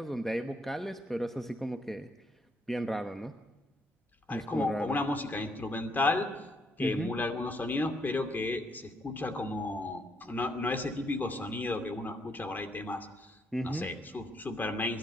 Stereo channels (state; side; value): normal; both; correlation 0.73